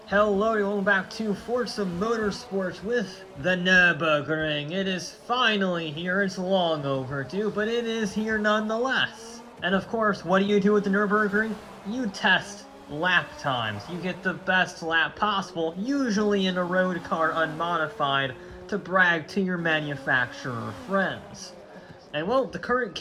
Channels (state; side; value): identical; both; correlation 1.00